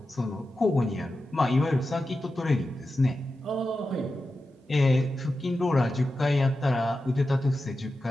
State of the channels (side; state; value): both; normal; correlation 0.91